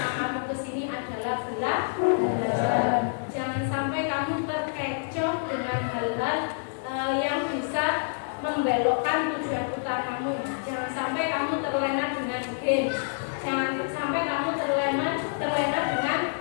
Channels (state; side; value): silent; right; 60 dB below the other